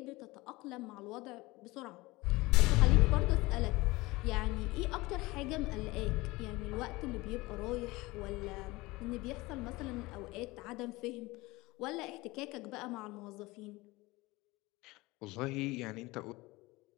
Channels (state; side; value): quieter; right; 21.5 dB